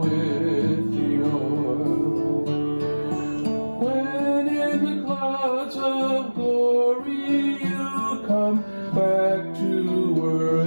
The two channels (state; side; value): inverted; both; correlation -1.00